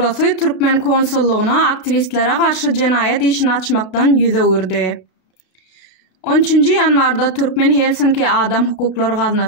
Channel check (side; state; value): right; late; 32 ms